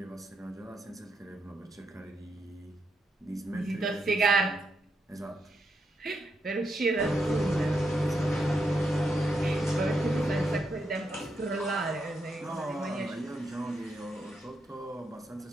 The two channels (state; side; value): normal; both; correlation 0.81